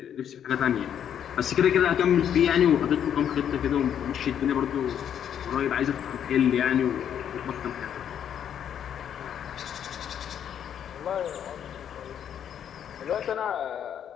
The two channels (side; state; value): right; quieter; 9.2 dB